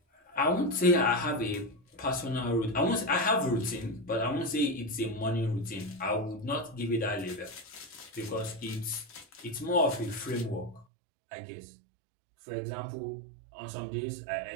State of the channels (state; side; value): drops out; left; at 10.9 s